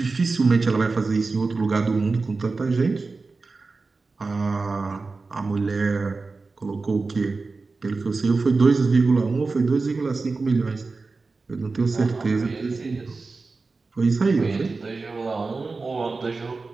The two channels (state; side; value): quieter; left; 4.0 dB